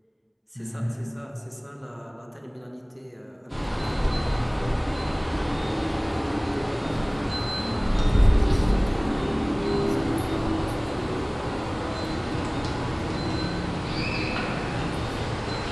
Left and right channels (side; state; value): both; identical; correlation 1.00